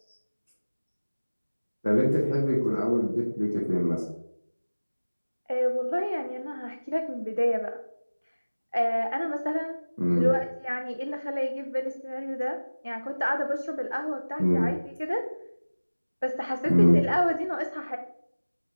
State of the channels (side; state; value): both; inverted; correlation -1.00